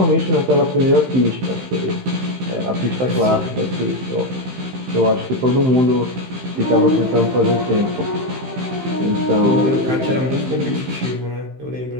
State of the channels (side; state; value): left; late; 15 ms